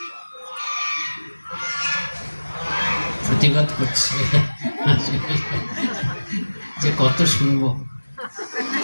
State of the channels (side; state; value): both; inverted; correlation -1.00